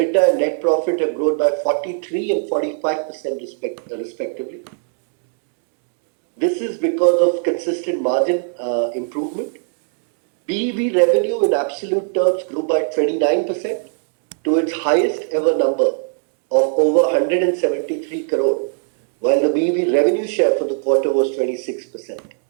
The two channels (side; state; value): left; silent; digital silence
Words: and net profit have grown by 43 and 45% respectively. This is because of consistent margin improvement. BEV revenue in absolute terms grew by 29% to its highest ever number of over 173 crore, while the BEV revenue share for the quarter was 26%.